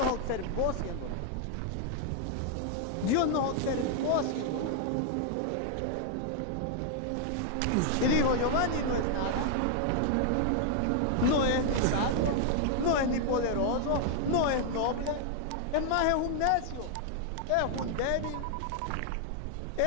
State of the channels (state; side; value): different; both; correlation 0.00